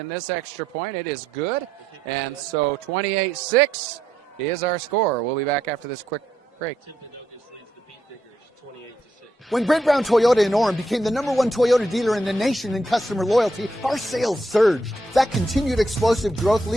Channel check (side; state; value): both; normal; correlation 0.78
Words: this extra point. It is good. And so 28-6 is our score. We'll be back after this quick break. Timpanogos leads the Beetdiggers 28-6. When Brent Brown Toyota in Orem became the #1 Toyota dealer in the nation in customer loyalty, our sales surged. That continued explosive growth